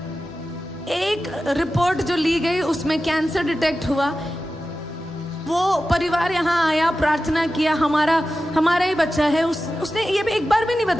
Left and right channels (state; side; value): normal; both; correlation 0.93